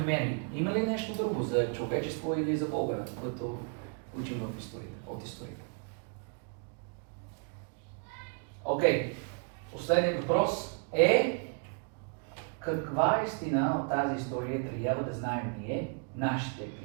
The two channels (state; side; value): quieter; left; 37.2 dB